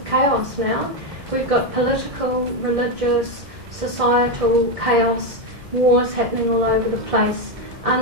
chaos now. We've got political, religious, societal chaos, wars happening all over the place,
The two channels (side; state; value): left; late; 2.1 ms